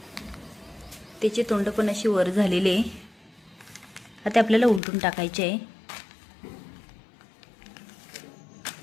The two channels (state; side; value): drops out; right; at 4.8 s